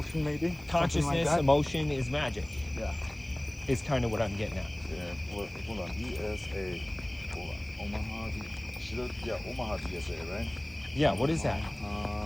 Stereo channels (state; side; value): noise; right; hiss, 30 dB below the sound